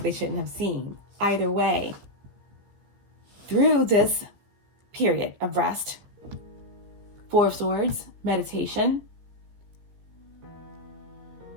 they shouldn't have seen. Either way, through this period of rest, Four of Swords, meditation,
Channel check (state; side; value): late; left; 15 ms